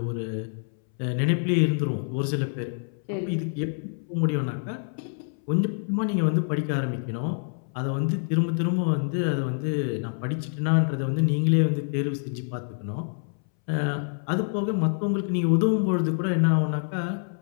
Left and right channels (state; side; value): silent; right; 61 dB below the other